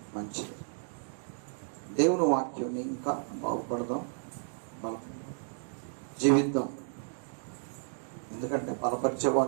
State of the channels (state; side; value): silent; left; digital silence